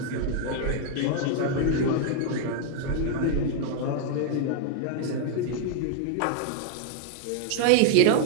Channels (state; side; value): different; both; correlation 0.00